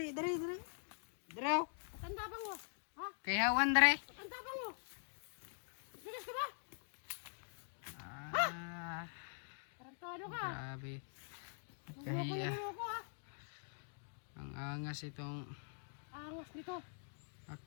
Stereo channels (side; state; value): right; silent; digital silence